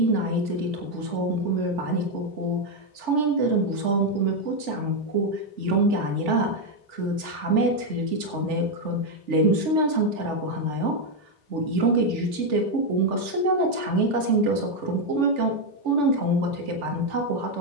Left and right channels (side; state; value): left; late; 3.4 ms